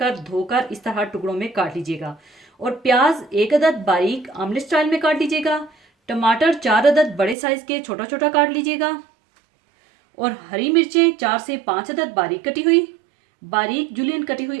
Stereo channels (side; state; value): left; drops out; at 7.4 s